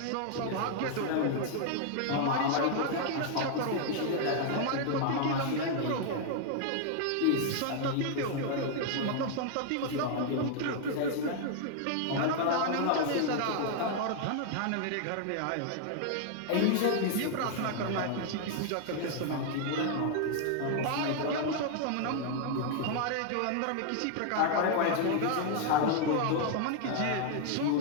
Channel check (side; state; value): both; different; correlation 0.00